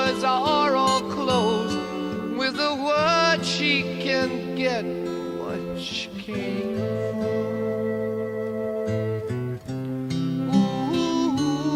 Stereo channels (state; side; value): identical; both; correlation 1.00